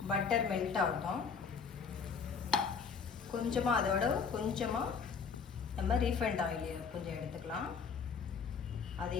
பட்டர் மெல்ட் ஆகட்டும். கொஞ்சமாக அதோட கொஞ்சமாக நம்ம ரீஃபைண்ட் ஆயில் கொஞ்சம் எடுத்துக்கலாம்.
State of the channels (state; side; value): quieter; right; 5.9 dB